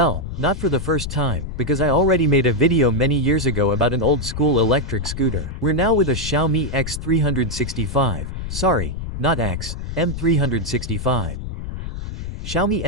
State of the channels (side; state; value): left; noise; rumble, 6 dB below the sound